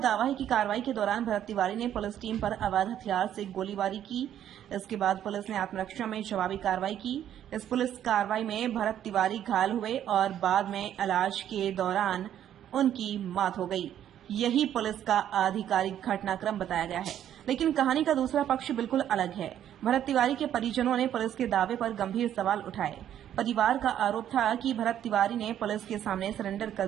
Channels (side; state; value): left; quieter; 10.7 dB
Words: है कि कार्रवाई के दौरान भरत तिवारी ने पुलिस टीम पर अवैध हथियार से गोलीबारी की। इसके बाद पुलिस ने आत्मरक्षा में जवाबी कार्रवाई की। इस पुलिस कार्रवाई में भरत तिवारी घायल हुए और बाद में इलाज के दौरान उनकी मौत हो गई। यही पुलिस का आधिकारिक घटनाक्रम बताया गया है, लेकिन कहानी का दूसरा पक्ष बिल्कुल अलग है। भरत तिवारी के परिजनों ने पुलिस के दावे पर गंभीर सवाल उठाए। परिवार का आरोप था कि भरत तिवारी ने पुलिस के सामने सरेंडर कर